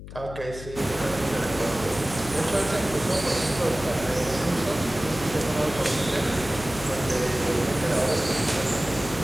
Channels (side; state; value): left; noise; hum, 13 dB below the sound